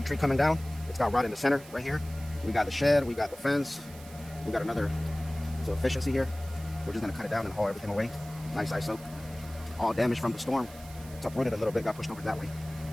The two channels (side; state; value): right; noise; hiss, 19 dB below the sound